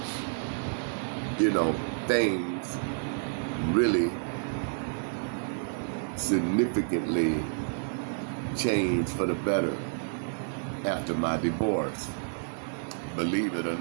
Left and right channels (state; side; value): silent; left; digital silence